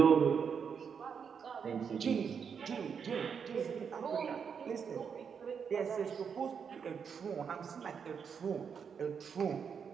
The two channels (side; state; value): left; quieter; 6.7 dB